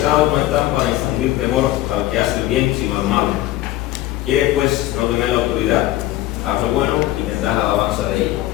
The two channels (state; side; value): quieter; right; 15.5 dB